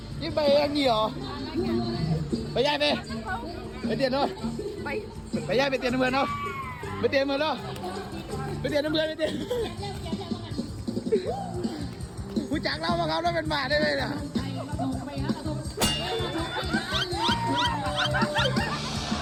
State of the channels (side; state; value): both; identical; correlation 1.00